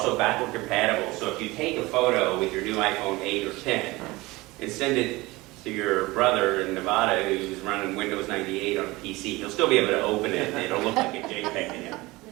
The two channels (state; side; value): quieter; left; 21.3 dB